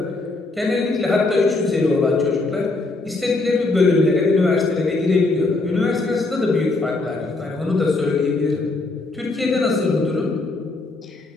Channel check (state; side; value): quieter; right; 3.3 dB